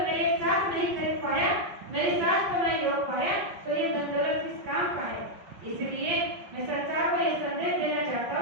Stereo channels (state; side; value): late; left; 5.4 ms